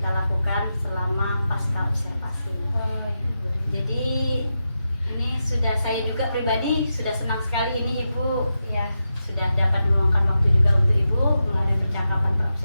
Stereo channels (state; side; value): inverted; both; correlation -0.89